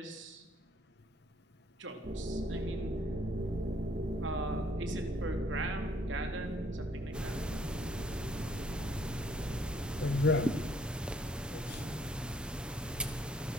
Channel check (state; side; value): normal; both; correlation 0.65